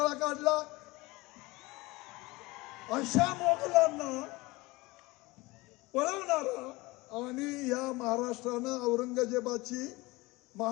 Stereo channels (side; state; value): right; quieter; 22.1 dB